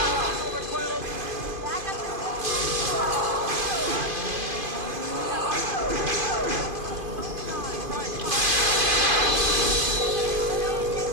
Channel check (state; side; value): late; left; 2.5 ms